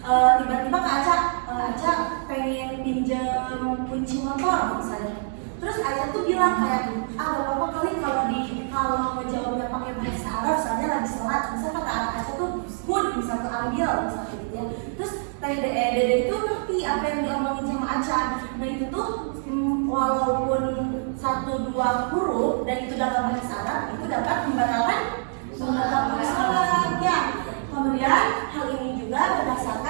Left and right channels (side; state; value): left; silent; digital silence